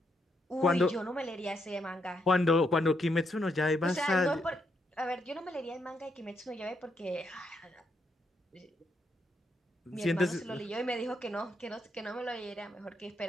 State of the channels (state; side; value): normal; both; correlation 0.78